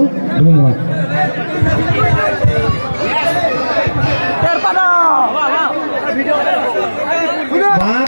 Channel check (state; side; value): inverted; both; correlation -1.00